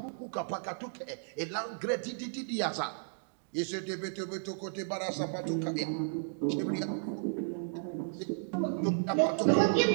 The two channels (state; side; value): silent; left; digital silence